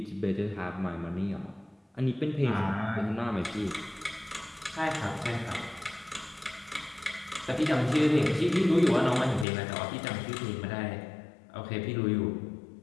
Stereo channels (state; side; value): drops out; right; at 9.5 s